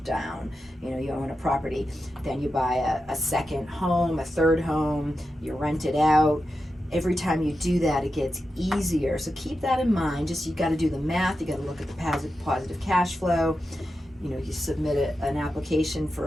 down, you own a property, then you buy a second home, a third home, you rent it out. Every time you do that, it gets easier. So keep that in mind. You got to do the math. You got to look at the positive cash flow. You submit an application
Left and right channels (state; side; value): normal; both; correlation 0.90